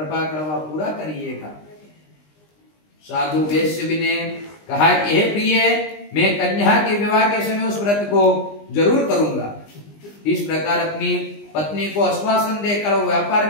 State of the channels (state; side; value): late; right; 20 ms